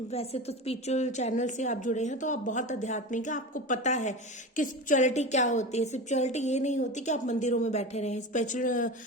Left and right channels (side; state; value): both; normal; correlation 0.27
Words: वैसे तो स्पिरिचुअल चैनल से आप जुड़े हैं तो आप बहुत आध्यात्मिक है, आपको पता है कि स्पिरिचुअलिटी क्या होती है। स्पिरिचुअलिटी ये नहीं होती कि आप मंदिरों में बैठे रहें। स्पिरिचुअल